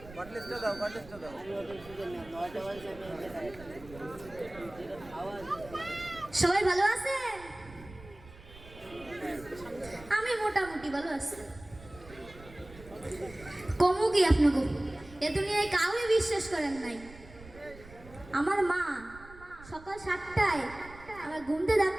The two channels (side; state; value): right; noise; rumble, 19 dB below the sound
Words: সবাই ভালো আছেন? আমি মোটামুটি ভালো আছি। কমু কি আপনাকে এ দুনিয়ায় কাউকে বিশ্বাস করেন নাই। আমার মা সকাল 7টায় আমার ঘুমতে ডাক